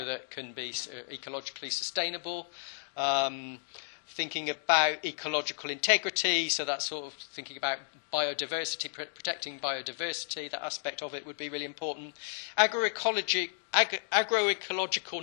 that can be ecologically sustainable. thinking about ecological integrity, so that's sort of thinking about biodiversity, protecting biodiversity, that aspect of it would be really important. Agroecological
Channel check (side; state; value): right; silent; digital silence